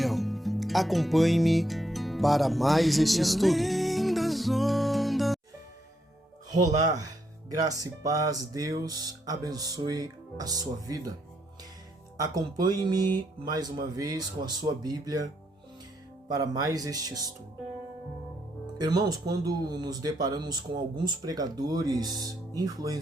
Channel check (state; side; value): normal; both; correlation 0.77